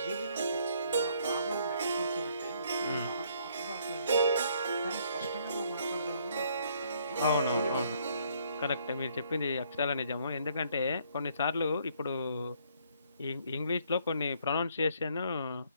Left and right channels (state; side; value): inverted; both; correlation -0.66